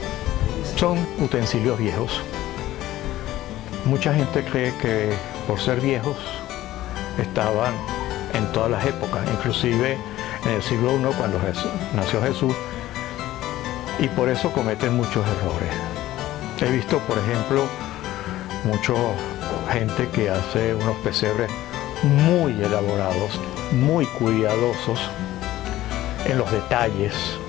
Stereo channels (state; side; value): quieter; right; 15.0 dB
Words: Son utensilios viejos. Mucha gente cree que por ser viejos estaban en todas las épocas, inclusive en el siglo I cuando nació Jesús, y por eso cometen muchos errores. He visto, por ejemplo, mucha gente que hace unos pesebres muy elaborados, muy cuidadosos en los detalles,